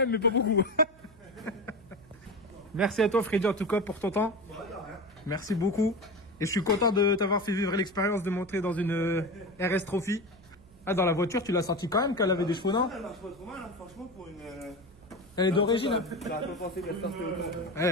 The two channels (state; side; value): noise; right; hum, 26 dB below the sound